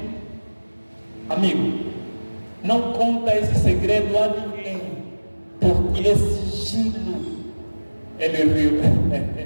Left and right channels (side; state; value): both; inverted; correlation -1.00